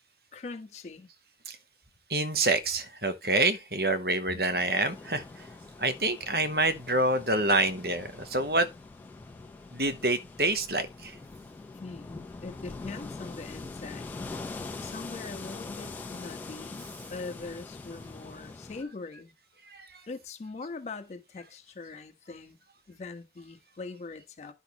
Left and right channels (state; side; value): normal; both; correlation 0.09